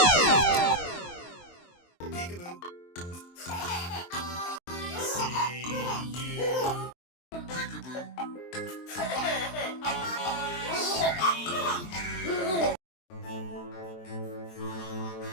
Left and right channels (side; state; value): right; late; 23 ms